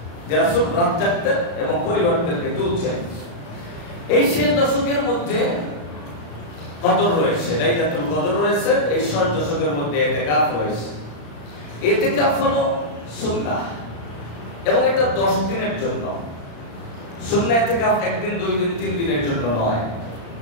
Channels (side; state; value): right; late; 35 ms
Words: যে রাসূল রাত জাগতেন এবং পরিবারদেরকে তুলছেন। এই শেষ দশকের মধ্যে কদর রয়েছে, লাইলাতুল কদর রয়েছে। এই শেষ দশকের মধ্যে ইতিকাফ রয়েছে। ইতিকাফ হলো সুন্নাহ এবং এটা 10 দিনের জন্য। সুন্নাহ ইতিকাফ একদিন, 2 দিন, 3 দিনের জন্য নয়।